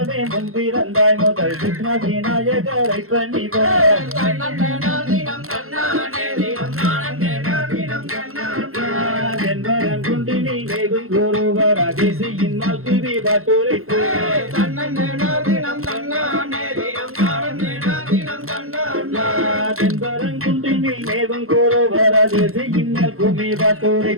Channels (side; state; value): left; late; 0.62 ms